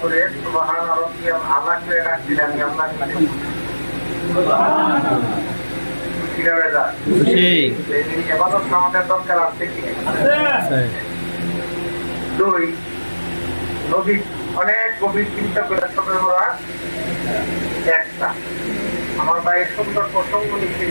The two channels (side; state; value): both; inverted; correlation -1.00